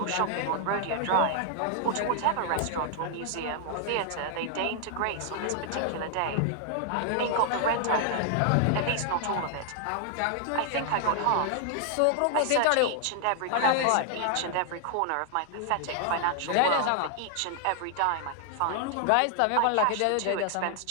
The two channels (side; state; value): both; different; correlation 0.00